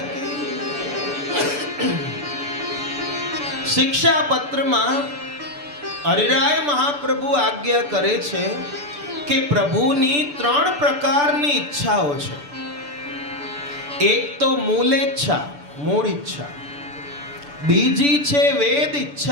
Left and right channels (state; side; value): late; left; 6.9 ms